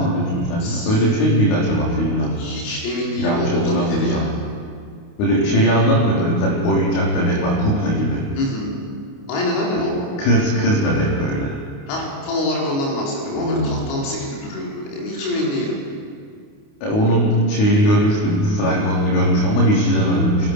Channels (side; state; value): right; late; 28 ms